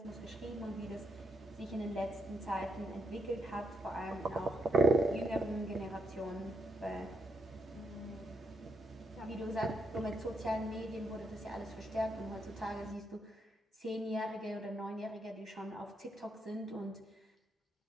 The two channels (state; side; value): normal; both; correlation 0.79